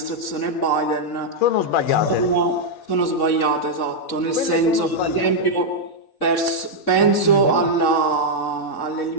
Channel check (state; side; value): late; right; 3.6 ms